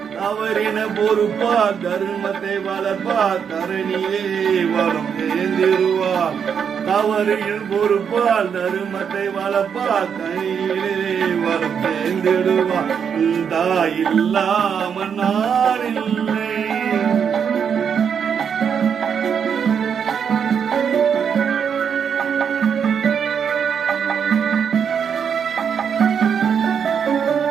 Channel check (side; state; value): left; quieter; 7.3 dB